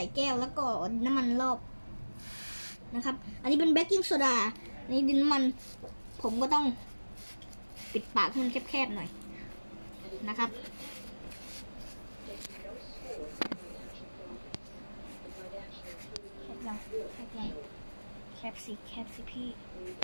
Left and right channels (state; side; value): inverted; both; correlation -1.00